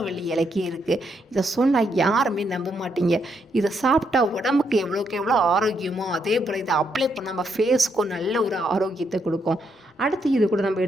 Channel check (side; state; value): both; normal; correlation 0.77